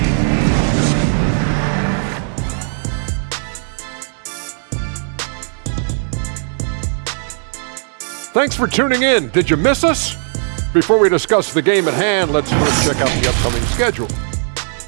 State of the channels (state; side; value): silent; left; 61 dB below the other